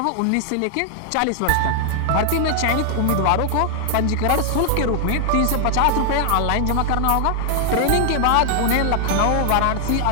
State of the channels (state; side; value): different; both; correlation 0.00